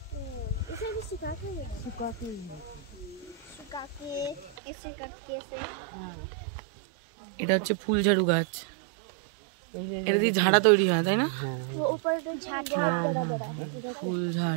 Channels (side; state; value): left; drops out; at 4.5 s